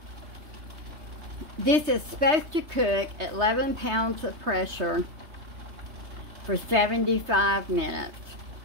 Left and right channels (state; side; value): late; left; 3.3 ms